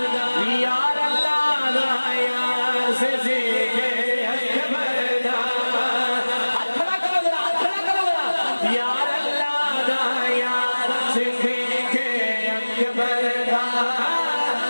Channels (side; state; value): both; inverted; correlation -1.00